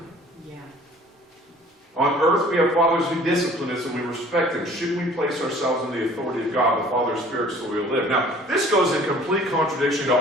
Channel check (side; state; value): both; normal; correlation 0.51